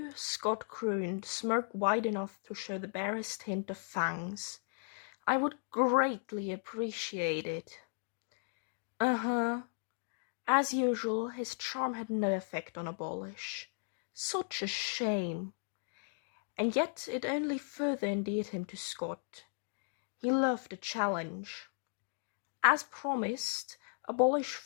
Scott crooned, smirk wide enough to show the barest hint of fangs. I would greatly appreciate it. Uh-huh. As usual, his charm had no effect on Abolish. Such a shame. And yet it only further endeared him to Scott. He loved a challenge. As promised, Abolish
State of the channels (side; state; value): right; silent; digital silence